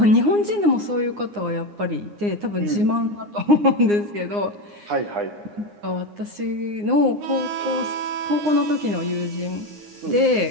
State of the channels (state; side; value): late; left; 9.7 ms